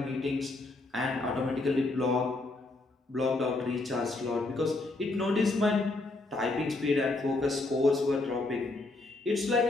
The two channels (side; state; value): right; quieter; 3.1 dB